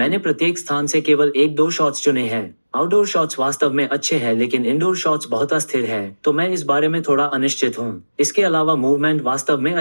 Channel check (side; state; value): both; inverted; correlation -1.00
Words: प्रत्येक स्थान से केवल 1-2 शॉट्स चुने हैं। आउटडोर शॉट्स वास्तव में अच्छे हैं, लेकिन इंडोर शॉट्स बहुत अस्थिर हैं, तो मैं इस बारे में थोड़ा अनिश्चित हूँ। इसके अलावा मूवमेंट वास्तव में